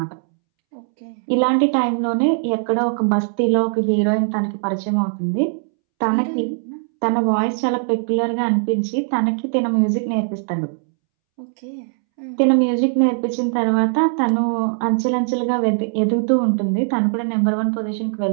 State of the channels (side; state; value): left; silent; 66 dB below the other